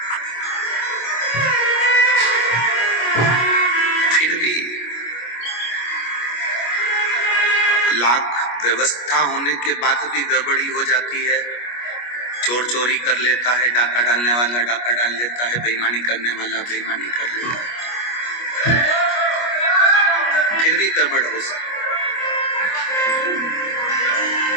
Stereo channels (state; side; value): late; right; 25 ms